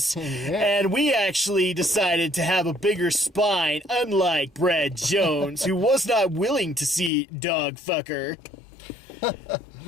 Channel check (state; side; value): drops out; right; at 7.1 s